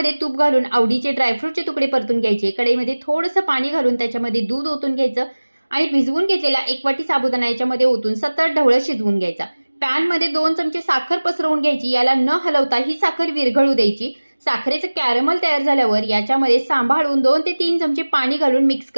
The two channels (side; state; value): both; inverted; correlation -1.00